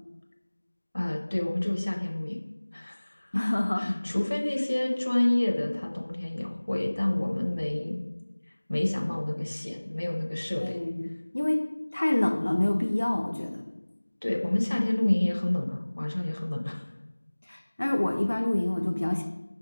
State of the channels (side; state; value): both; inverted; correlation -1.00